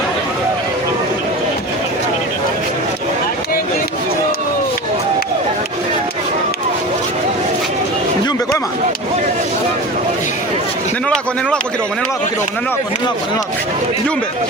Mjumbe kwema? Neno lako kidogo.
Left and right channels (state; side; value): normal; both; correlation 0.31